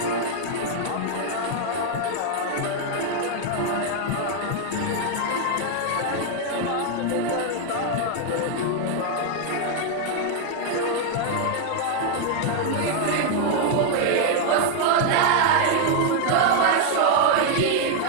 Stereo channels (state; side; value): different; both; correlation 0.00